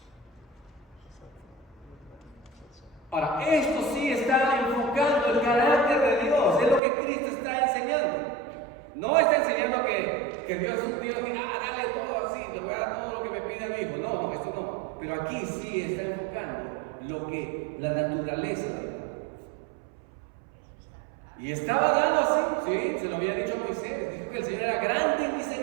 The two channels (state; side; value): drops out; left; at 6.8 s